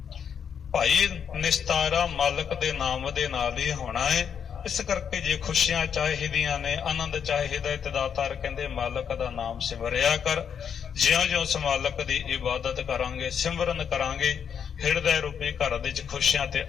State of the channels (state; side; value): quieter; right; 7.6 dB